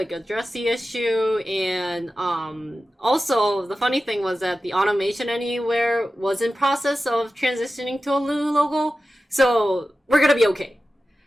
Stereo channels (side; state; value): both; normal; correlation 0.94